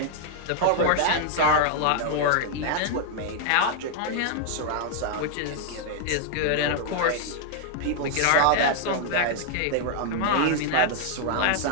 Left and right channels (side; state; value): both; different; correlation 0.00